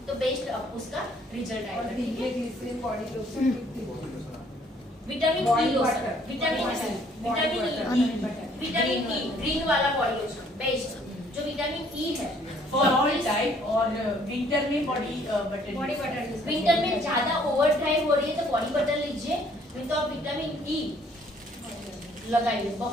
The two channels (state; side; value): normal; both; correlation 0.62